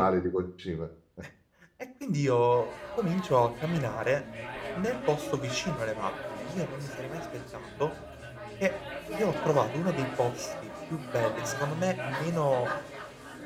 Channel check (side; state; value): both; identical; correlation 1.00